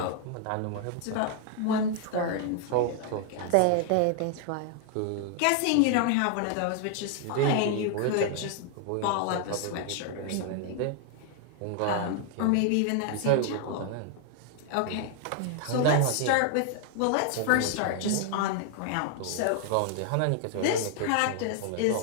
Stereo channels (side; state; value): both; different; correlation 0.00